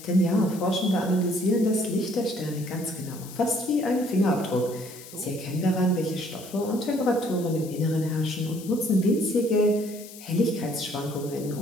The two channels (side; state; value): left; noise; hiss, 17 dB below the sound